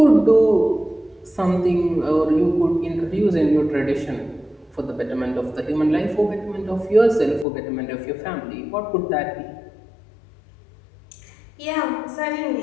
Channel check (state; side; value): drops out; right; at 7.5 s